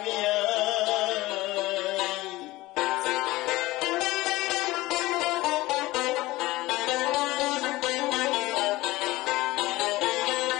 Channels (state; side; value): quieter; right; 18.9 dB